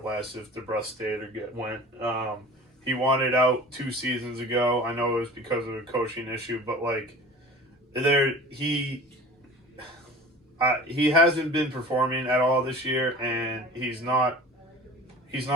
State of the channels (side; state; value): both; normal; correlation 0.41